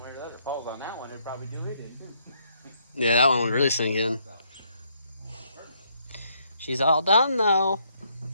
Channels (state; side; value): inverted; both; correlation -0.71